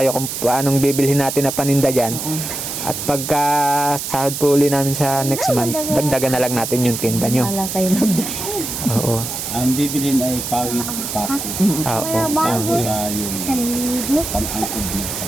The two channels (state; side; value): noise; right; hiss, 5 dB below the sound